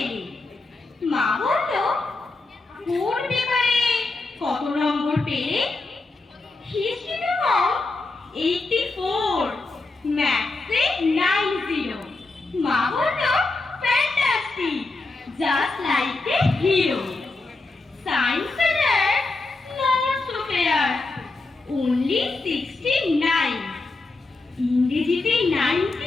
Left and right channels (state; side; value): quieter; right; 3.4 dB